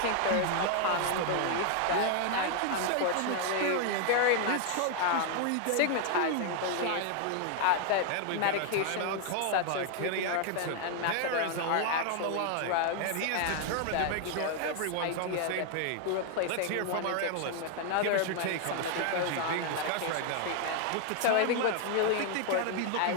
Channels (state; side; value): different; both; correlation 0.00